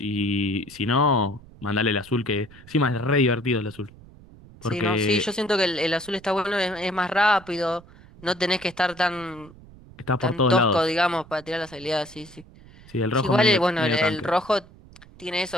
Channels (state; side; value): noise; right; rumble, 22 dB below the sound